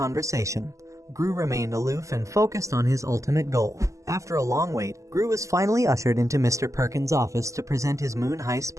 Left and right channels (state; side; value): late; left; 0.16 ms